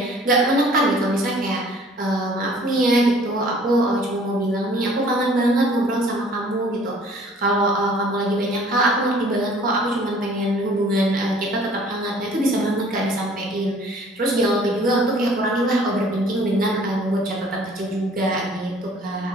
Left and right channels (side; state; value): both; normal; correlation 0.54